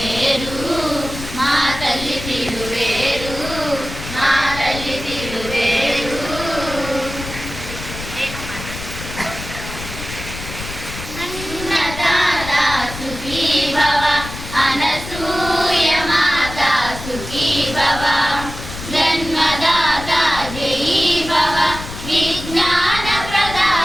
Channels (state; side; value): noise; left; rumble, 10 dB below the sound